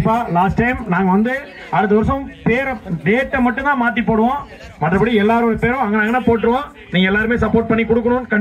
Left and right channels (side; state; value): both; identical; correlation 1.00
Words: லாஸ்ட் டைம் நாங்க வந்து அடுத்த வருஷம் பேரை டேட்டை மட்டும் தான் மாத்தி போடுவோம், மற்றபடி எல்லாரோட பேரும் அங்கே போட்டுருவோம். நீங்க எல்லாருமே சப்போர்ட் பண்ணி கொடுக்கணும்